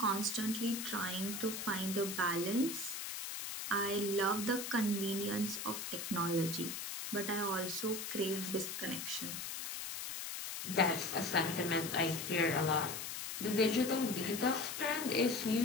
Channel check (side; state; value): left; noise; hiss, 5 dB below the sound